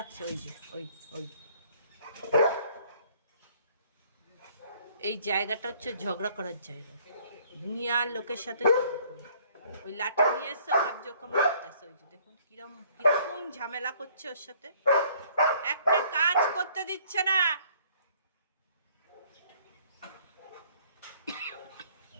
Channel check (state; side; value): inverted; both; correlation -0.59